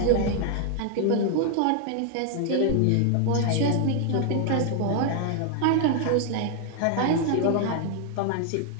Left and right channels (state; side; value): different; both; correlation 0.00